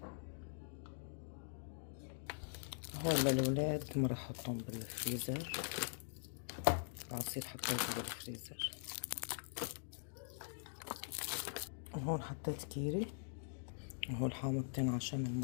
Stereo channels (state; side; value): silent; right; digital silence